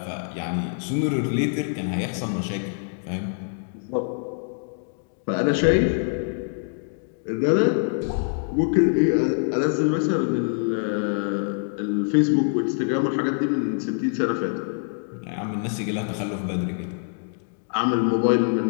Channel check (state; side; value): silent; right; 62 dB below the other